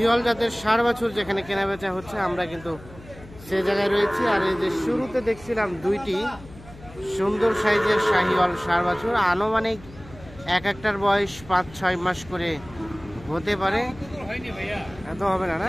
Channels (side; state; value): left; noise; hum, 19 dB below the sound